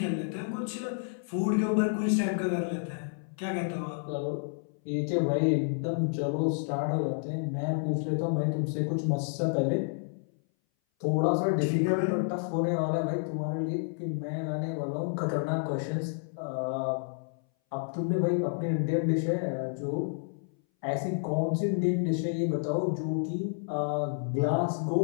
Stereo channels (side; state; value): right; silent; 58 dB below the other